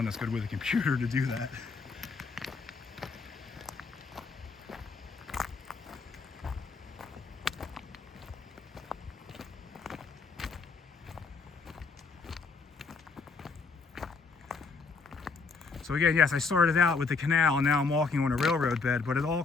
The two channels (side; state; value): right; quieter; 4.5 dB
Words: that's good with a computer to do that. So again, yes, I started out with the canal and now I'm walking on a railroad bed, but it all